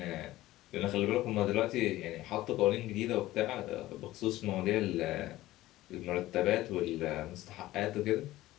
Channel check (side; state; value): right; quieter; 16.3 dB